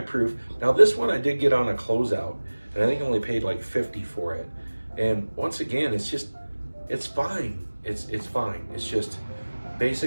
proof. Now this one I did get on a closeout, and I think I only paid like 50 for it. And once again, it's fine. It's fine. It's just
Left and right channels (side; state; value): both; inverted; correlation -1.00